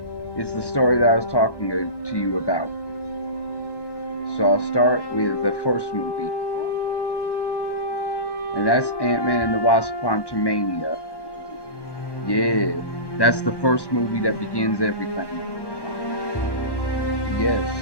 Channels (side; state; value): right; late; 1.1 ms